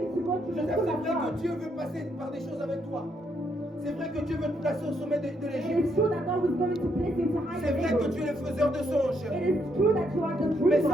to go to the Joseph, school c'est of vrai que God. Dieu veut passer par des choses avec toi. C'est vrai que Dieu veut te placer au sommet de It l'Égypte. is true that God is going to place you into high C'est vrai que places. tu es le faiseur de songes. It is true that you are the Mais dreamer.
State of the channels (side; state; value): both; normal; correlation 0.74